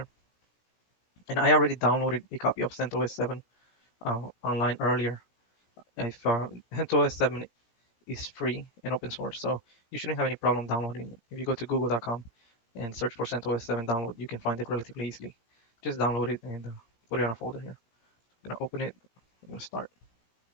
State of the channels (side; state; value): right; late; 17 ms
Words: And I already downloaded a copy of CentOS 7 online earlier. If CentOS 7 is free and open source, so you shouldn't have any problem downloading it. If you go to google.com and search for CentOS 7 download, you can find it relatively easily. Just download it and put it on a folder here. I'm gonna open it. I'm gonna start.